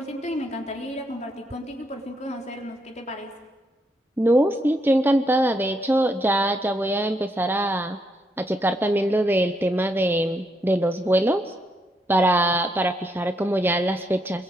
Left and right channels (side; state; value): both; normal; correlation 0.77